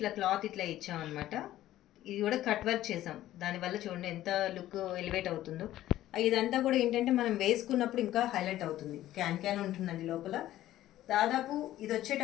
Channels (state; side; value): quieter; right; 14.0 dB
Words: క్లాత్ ఇట్లా ఇచ్చామన్నమాట. ఇది కూడా కట్ వర్క్ చేసాం. దానివల్ల చూడండి ఎంత లుక్ ఎలివేట్ అవుతుందో. ఇదంతా కూడా ఏంటంటే మనం వేసుకున్నప్పుడు ఇంకా హైలైట్ అవుతుంది. క్యాన్ ఉంటుందండి లోపల. దాదాపు ఇది